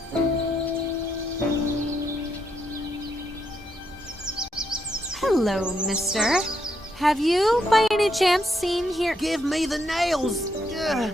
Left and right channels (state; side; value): normal; both; correlation 0.78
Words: Hello, mister. Have you, by any chance, seen here? Give me the nails! Ugh.